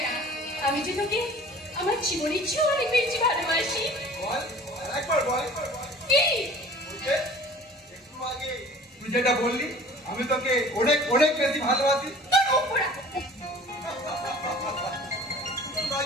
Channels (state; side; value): normal; both; correlation 0.46